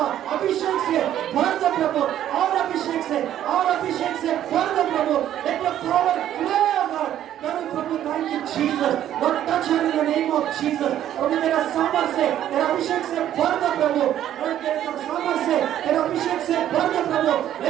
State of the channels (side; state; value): left; quieter; 11.4 dB